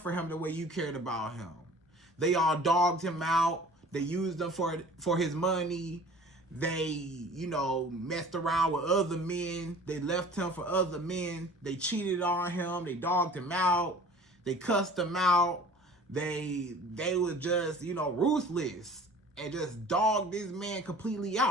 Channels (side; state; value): both; normal; correlation 0.45